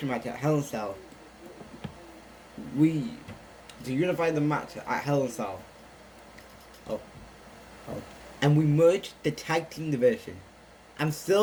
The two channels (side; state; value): both; identical; correlation 1.00